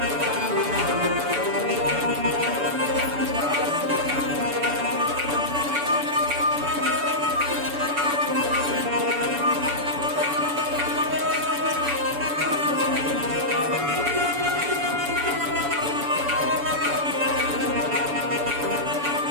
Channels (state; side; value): late; left; 7.0 ms